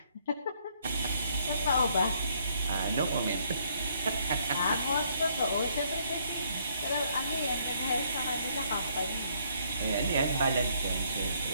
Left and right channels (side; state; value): both; inverted; correlation -0.68